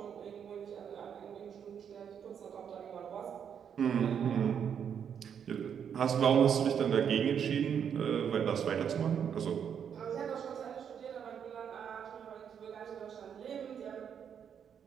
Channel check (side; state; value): left; quieter; 8.0 dB